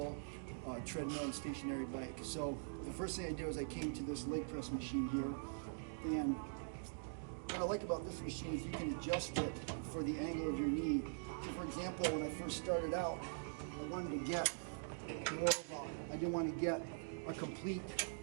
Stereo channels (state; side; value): silent; left; digital silence